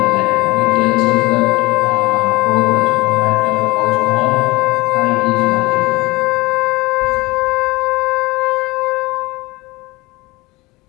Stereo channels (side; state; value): right; quieter; 21.9 dB